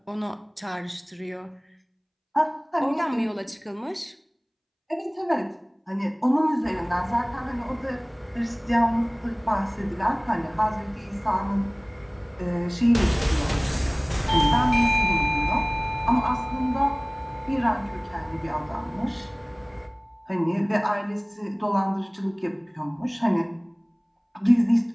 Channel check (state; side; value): identical; both; correlation 1.00